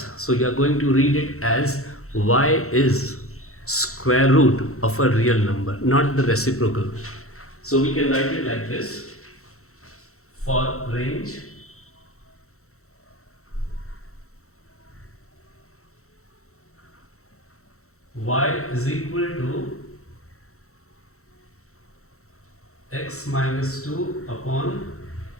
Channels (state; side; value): late; right; 0.64 ms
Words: So you are going to read it as y is square root of a real number, not the reciprocal. So we can write it like this. For range y is equal to x minus 2 upon,